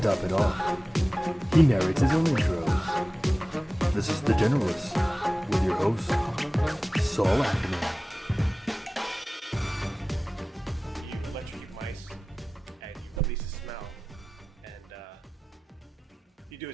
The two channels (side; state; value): both; normal; correlation 0.97